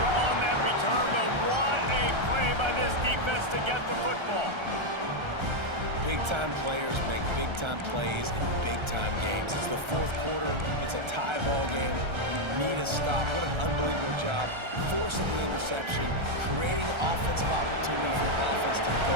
on that return, but what a play by this defense to get the football. Big-time players make big-time plays in big-time games. It's the fourth quarter. It's a tie ball game. You need a stop. What an unbelievable job. Forcing the interception, creating offensive opportunity for the offense to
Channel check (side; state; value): left; late; 1.3 ms